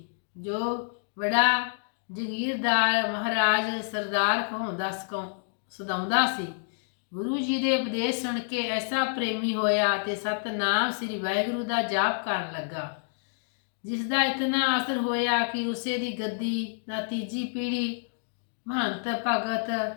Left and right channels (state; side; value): silent; right; digital silence